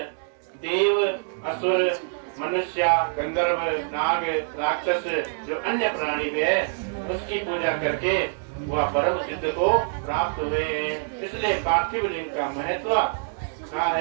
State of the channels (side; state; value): left; silent; digital silence